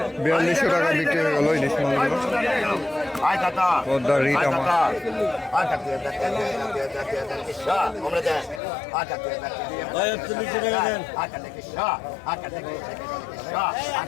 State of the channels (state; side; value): drops out; right; at 8.6 s